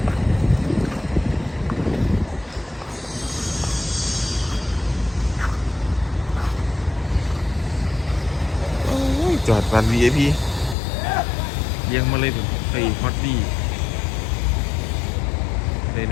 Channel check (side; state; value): right; drops out; at 10.8 s